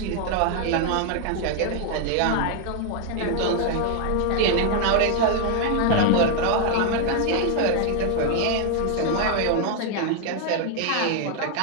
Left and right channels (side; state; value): both; different; correlation 0.00